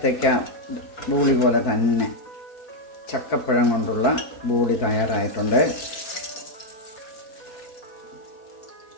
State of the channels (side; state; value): right; late; 4.5 ms